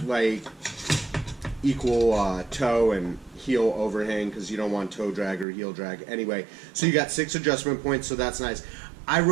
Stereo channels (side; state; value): left; drops out; at 5.5 s